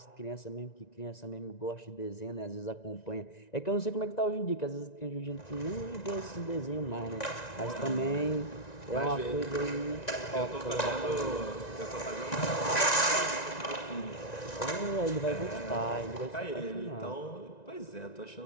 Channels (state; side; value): late; right; 1.9 ms